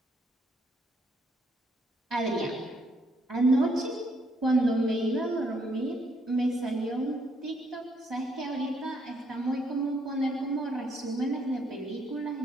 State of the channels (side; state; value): both; normal; correlation 0.71